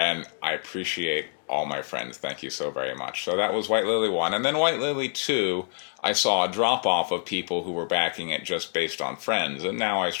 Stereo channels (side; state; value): right; silent; digital silence